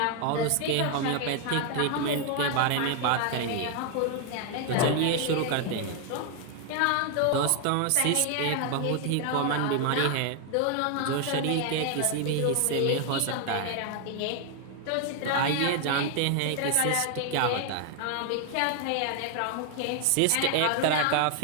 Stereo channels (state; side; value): different; both; correlation 0.01